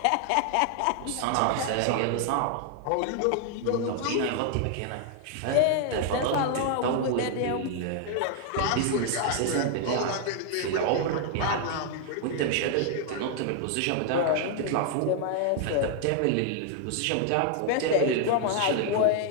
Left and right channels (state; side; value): different; both; correlation 0.00